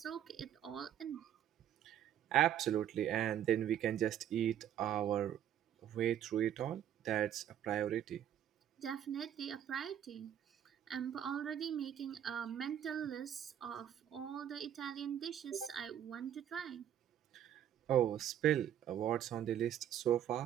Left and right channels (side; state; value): left; quieter; 10.4 dB